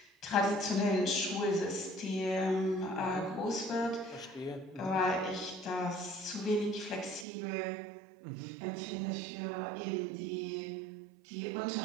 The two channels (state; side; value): drops out; left; at 7.2 s